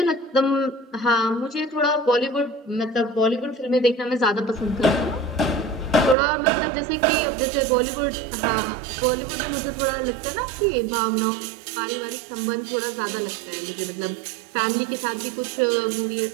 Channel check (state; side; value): drops out; left; at 6.2 s